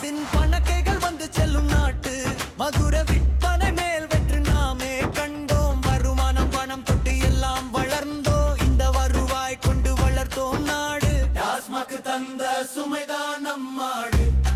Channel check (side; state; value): both; identical; correlation 1.00